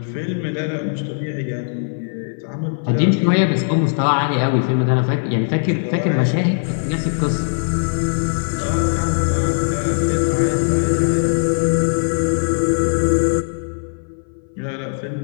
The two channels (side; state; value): right; silent; 59 dB below the other